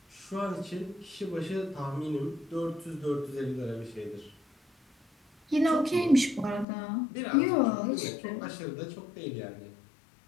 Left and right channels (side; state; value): right; drops out; at 6.7 s